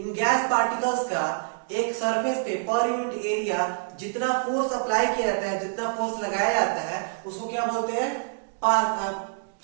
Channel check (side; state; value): left; silent; digital silence